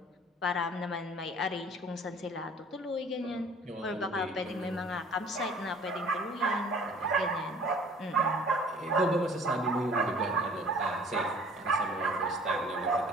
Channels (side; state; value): both; normal; correlation 0.50